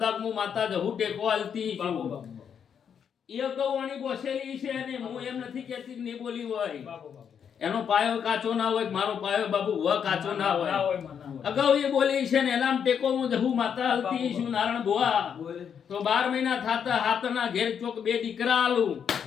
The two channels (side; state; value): right; quieter; 7.7 dB